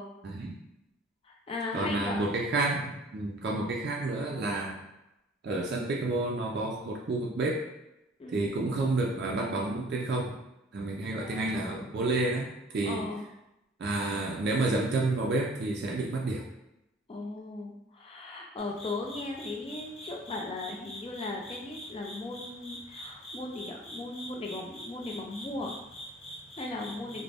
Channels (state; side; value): normal; both; correlation 0.50